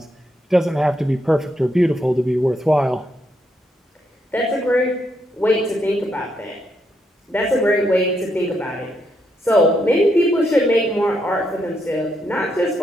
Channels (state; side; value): normal; both; correlation 0.78